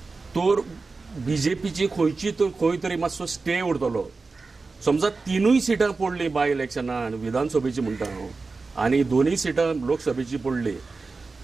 तर बीजेपीची खंय तरी मातसो स्टे उरतलो. समजा 3 सिटां पडली बाय इलेक्शनान विधानसभेची म्हणटा हांव आनी 2 सिटां लोकसभेची पडली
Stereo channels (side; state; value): left; quieter; 4.0 dB